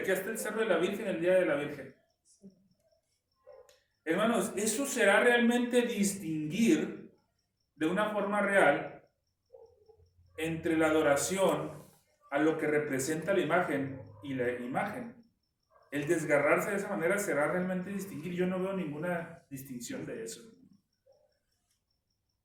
hasta el Cerro de la Virgen el Día de la Virgen. Hermanos, eso será realmente distinguir de una forma real entre la adoración a lo que representa la imagen y la imagen. El desgarrarse de esa manera será realmente distinguir. Yo no veo ninguna distinción de eso.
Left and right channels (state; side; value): identical; both; correlation 1.00